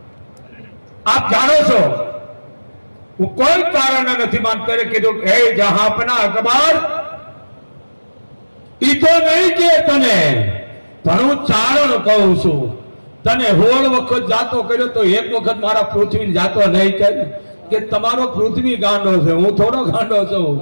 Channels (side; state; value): both; inverted; correlation -1.00